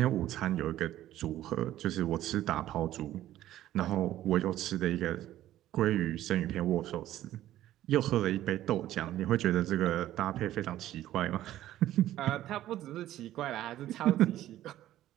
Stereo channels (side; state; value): left; quieter; 13.5 dB